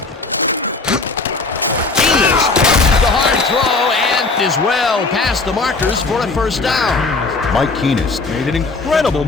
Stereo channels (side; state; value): right; quieter; 3.8 dB